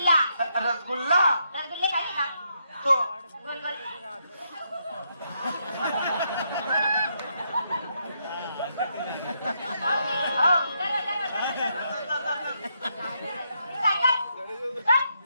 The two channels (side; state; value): both; inverted; correlation -0.78